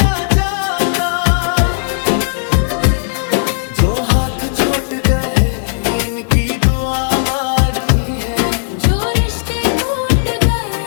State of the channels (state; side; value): silent; right; digital silence